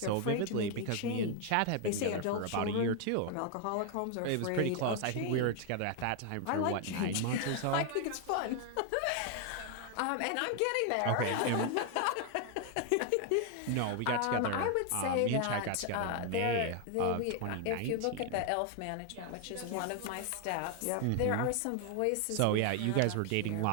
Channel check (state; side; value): different; both; correlation 0.01